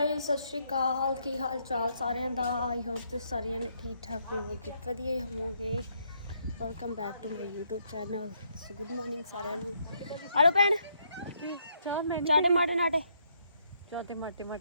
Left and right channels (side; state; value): both; inverted; correlation -0.74